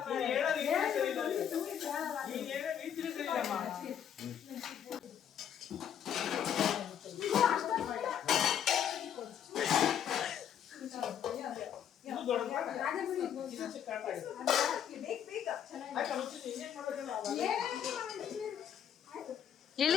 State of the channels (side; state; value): right; quieter; 9.1 dB